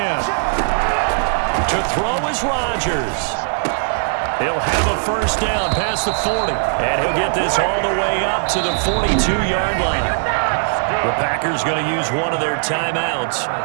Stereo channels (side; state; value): left; silent; digital silence